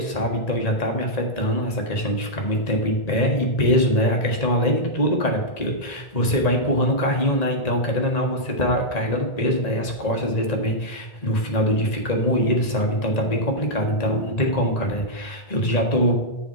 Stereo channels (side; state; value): right; late; 1.9 ms